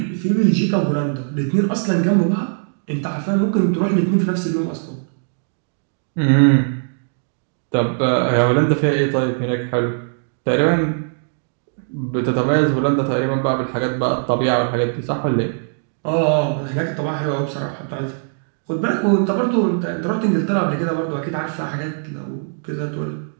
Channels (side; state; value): left; silent; digital silence